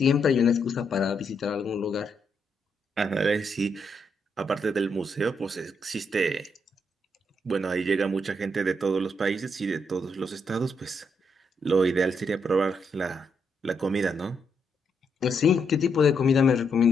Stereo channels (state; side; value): normal; both; correlation 0.78